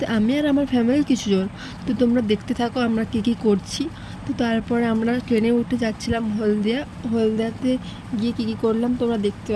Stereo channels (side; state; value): both; identical; correlation 1.00